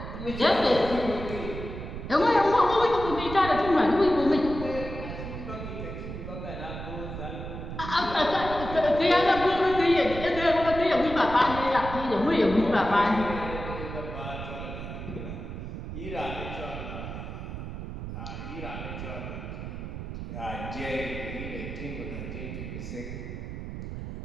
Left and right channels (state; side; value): noise; right; rumble, 8 dB below the sound